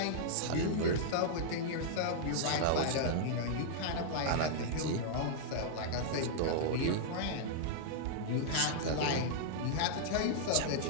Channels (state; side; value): different; both; correlation -0.02